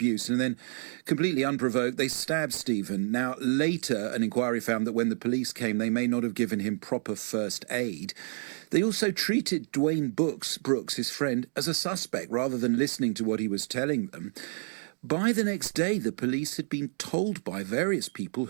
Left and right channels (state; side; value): silent; left; 58 dB below the other